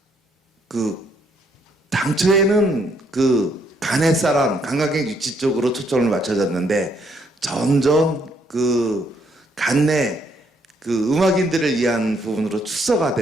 당초에는 간햇사람, 관광객 유치 쪽으로 초점을 맞춰졌는데 점점 간내 음악인들을 위한 부분으로 축소가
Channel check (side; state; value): both; normal; correlation 0.71